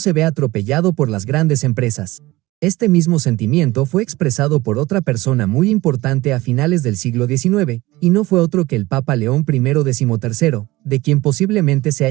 vea atropellado por las grandes empresas. Este mismo sentimiento fue expresado por otra persona muy importante a finales del siglo XIX, y no fue otro que el Papa León I XIII, de quien posiblemente se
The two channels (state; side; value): quieter; left; 19.3 dB